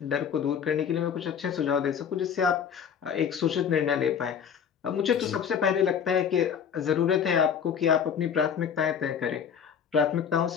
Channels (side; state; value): right; quieter; 7.6 dB